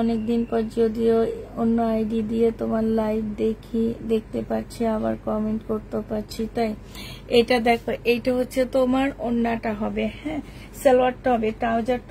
অনেকদিন পর, যদিও অন্য আইডি দিয়ে তোমার লাইভ দেখতে পাচ্ছি, আবার কমেন্ট করতে পারছি। তাই এটা দেখো, এইটা হচ্ছে তোমার ওন্নাটা হবে, হ্যাঁ সালোয়ারটা হবে,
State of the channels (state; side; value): identical; both; correlation 1.00